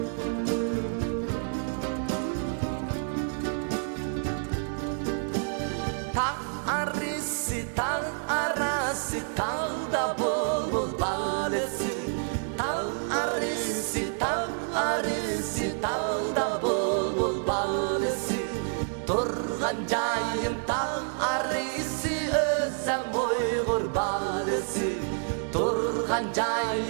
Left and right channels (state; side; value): silent; left; 59 dB below the other